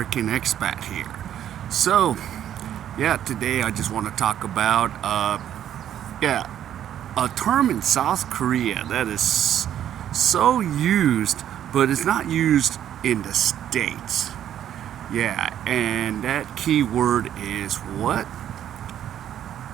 expat here. So, today I just want to talk about, a term in South Korea that is so used, but it's not used in the States. Yeah, and that key word is what?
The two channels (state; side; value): quieter; left; 10.6 dB